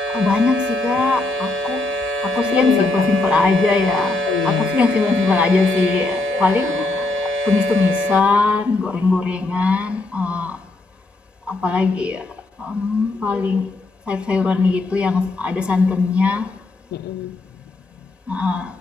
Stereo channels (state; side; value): quieter; right; 3.1 dB